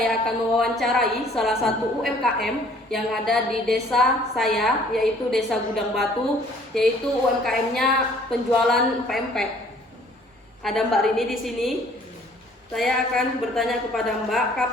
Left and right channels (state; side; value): normal; both; correlation 0.57